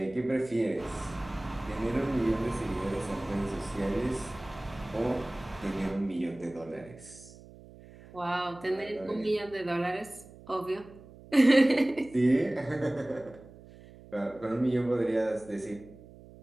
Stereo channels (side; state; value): right; noise; hum, 20 dB below the sound